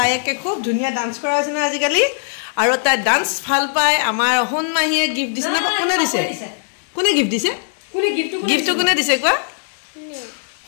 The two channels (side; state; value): right; silent; 61 dB below the other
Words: একে খুব ধুনীয়া ডান্স কৰা হৈছে না আজিকালি আৰু তাই ডান্স ভাল পায় আমাৰ সোণমাহীয়ে গিফ্ট দিছে না কোনে দিছে কোনে গিফ্ট দিছে গিফ্টটো কোনে দিছে কোৱা